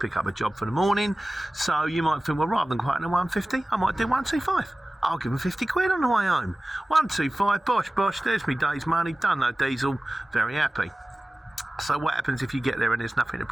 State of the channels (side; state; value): both; normal; correlation 0.97